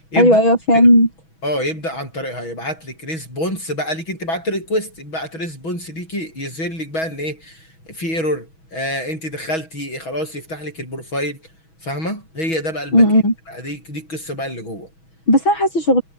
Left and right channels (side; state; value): right; late; 6.2 ms